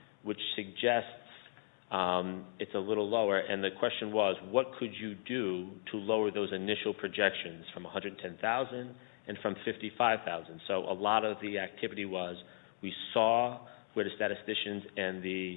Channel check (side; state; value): right; silent; 53 dB below the other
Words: which suggests it's a little lower. And the question was, what could you do to lower those initial projections from 110,000 and from 55,000? So a lot of the activity was, We saw where the statisticians and the